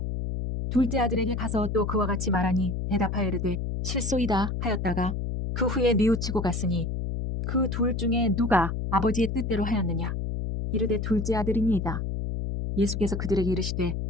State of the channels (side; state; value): left; noise; hum, 2 dB below the sound